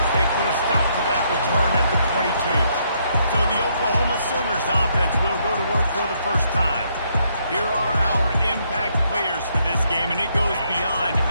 they put a stop to that return at the 22. So the Oklahoma Sooners offense will go to work for the first time. Here are our impact players for this game, and it goes beyond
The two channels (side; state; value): both; inverted; correlation -0.73